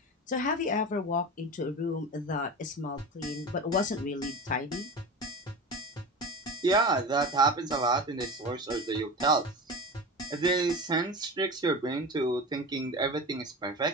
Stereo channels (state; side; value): normal; both; correlation 0.29